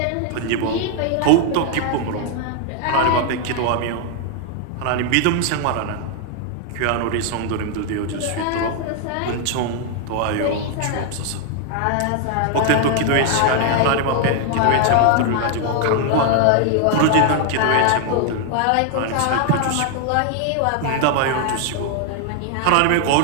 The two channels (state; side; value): different; both; correlation 0.00